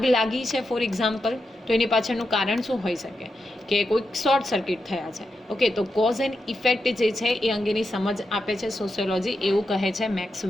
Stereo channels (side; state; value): both; normal; correlation 0.87